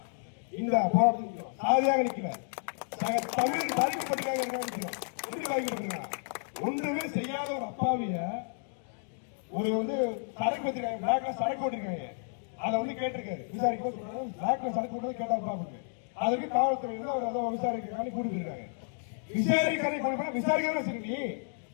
இந்த போராட்டத்தில் சாதியாக நிற்கிறார். தமிழ் பாதிக்கப்பட்டிருக்காங்க நிற்கிறோம். எப்படி பாதிக்கப்பட்டிருக்காங்க? ஒன்றுமே செய்யாத ஒரு அப்பாவிய ஒரு சரக்கு வச்சிருக்காங்க, பிளாக்ல சரக்கு ஓட்டிருக்காங்க. அதை கேட்டிருக்காரு விசாரிக்க பிளாக்ல சரக்கு ஓட்டுறது கேட்டா பாப்பீங்க. அதுக்கு காவல்துறை அவர் விசாரிக்கிறாங்க கூட்டிட்டு இருக்காங்க. விசாரிக்க நீ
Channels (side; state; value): right; silent; digital silence